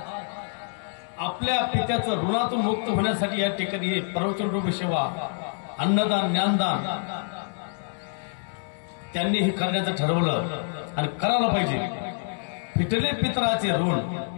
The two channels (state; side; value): silent; right; 61 dB below the other